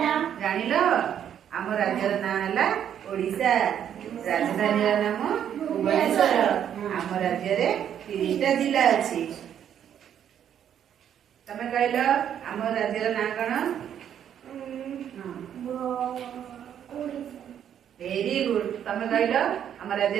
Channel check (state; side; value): quieter; left; 9.4 dB